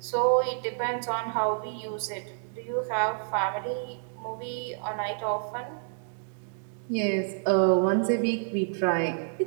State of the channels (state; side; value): silent; left; digital silence